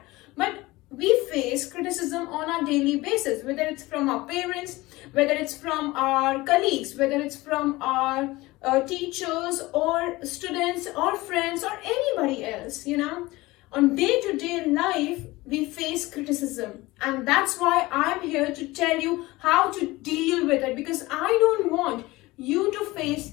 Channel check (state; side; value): quieter; right; 20.2 dB